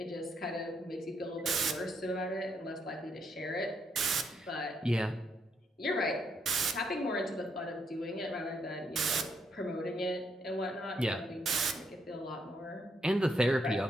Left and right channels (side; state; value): both; normal; correlation 0.75